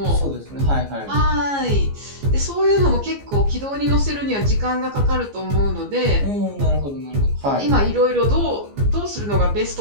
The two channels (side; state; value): left; late; 14 ms